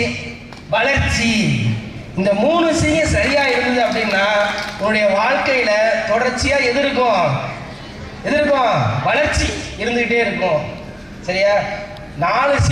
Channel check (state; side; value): identical; both; correlation 1.00